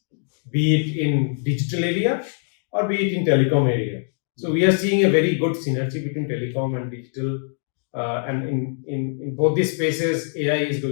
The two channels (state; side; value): silent; right; digital silence